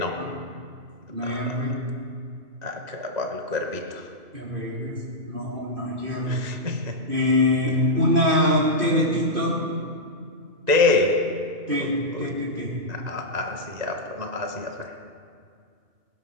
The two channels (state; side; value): late; left; 2.0 ms